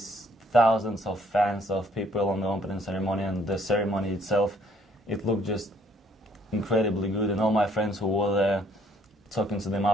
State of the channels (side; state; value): both; normal; correlation 0.64